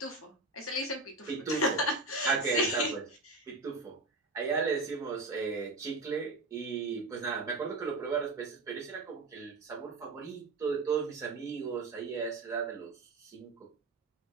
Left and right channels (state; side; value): quieter; left; 3.1 dB